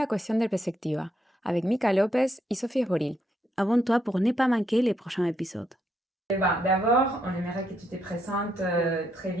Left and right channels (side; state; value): both; normal; correlation 0.77